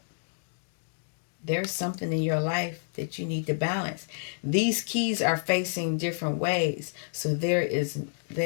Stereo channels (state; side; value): silent; right; digital silence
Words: There's something in your life that you need to balance. These keys are facing different ways. So there's